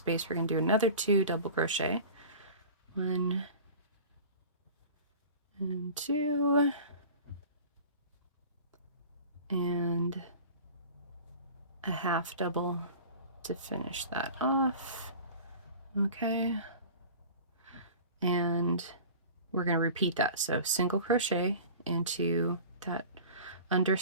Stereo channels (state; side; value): inverted; both; correlation -0.40